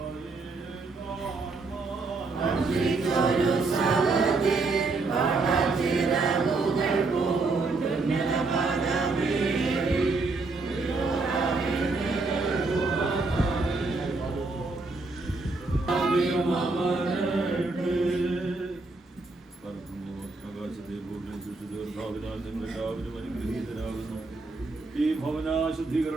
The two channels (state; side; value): quieter; left; 3.7 dB